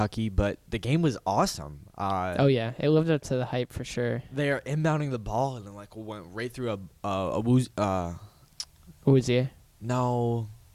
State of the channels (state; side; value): identical; both; correlation 1.00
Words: but the game was awesome. Oh, yeah. It lived up to the hype for sure. They are inbounding the ball and then went right through Awuzie. No,